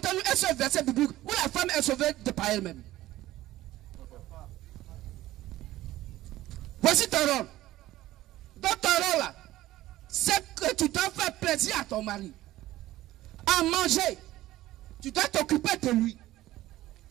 un seul verset biblique où la femme est sauvée de par elle-même. Voici ton rôle. Dans ton rôle là, c'est que tu dois faire plaisir à ton mari. À manger, tu dois t'occuper de lui.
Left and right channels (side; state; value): left; quieter; 15.7 dB